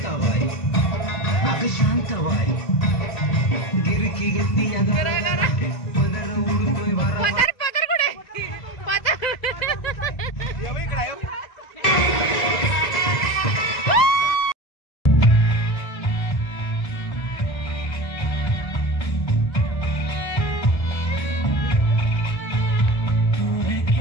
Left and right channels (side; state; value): right; late; 2.0 ms